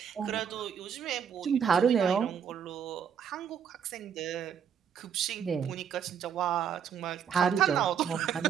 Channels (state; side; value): quieter; left; 7.9 dB